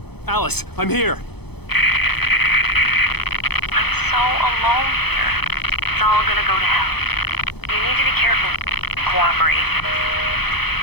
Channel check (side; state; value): right; late; 0.98 ms